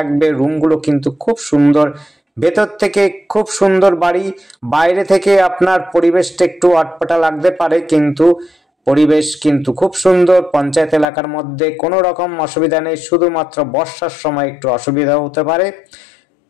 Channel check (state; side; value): drops out; right; at 11.1 s